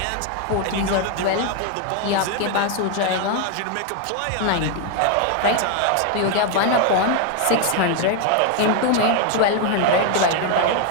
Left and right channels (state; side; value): different; both; correlation 0.01